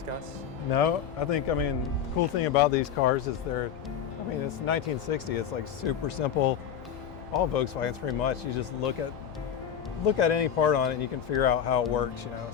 No, the cool thing about these cars is it's 1960. It's like super simple. All Volkswagens pretty much. You just look at any part on it and you can figure out how it works, So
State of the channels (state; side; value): quieter; right; 8.6 dB